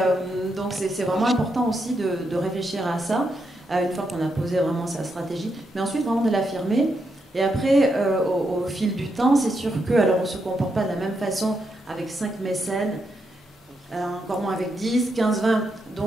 donc c'est vraiment important aussi de réfléchir à ça, une fois qu'on a posé vraiment sa stratégie, mais ensuite vraiment de l'affirmer. Et après, au fil du temps, c'est sûr que, alors on ne se comporte pas de la même façon avec 5 mécènes, encore moins avec 10, 15, 20.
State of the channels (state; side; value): normal; both; correlation 0.82